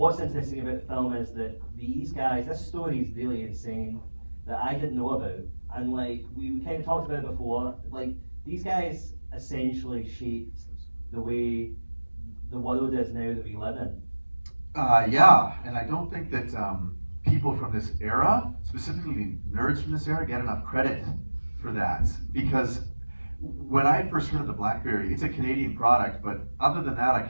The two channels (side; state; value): both; inverted; correlation -1.00